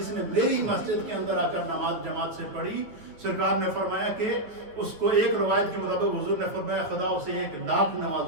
نے میری مسجد کے اندر آ کر نماز جماعت سے پڑھی، سرکار نے فرمایا کہ اس کو ایک روایت کے مطابق حضور نے فرمایا خدا اسے 1,00,000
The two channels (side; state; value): left; late; 9.4 ms